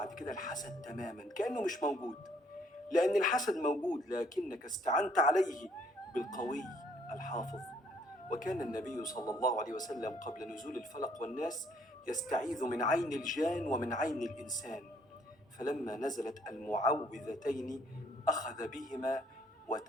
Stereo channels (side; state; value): both; normal; correlation 0.65